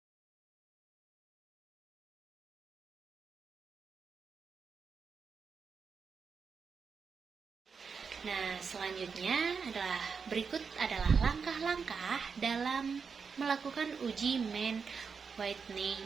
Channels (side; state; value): left; quieter; 5.7 dB